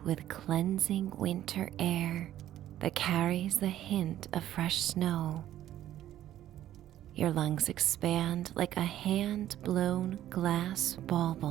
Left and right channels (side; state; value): left; quieter; 12.5 dB